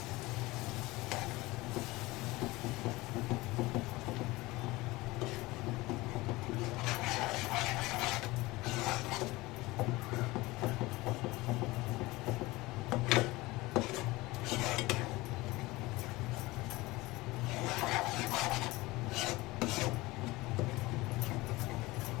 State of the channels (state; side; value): quieter; right; 20.7 dB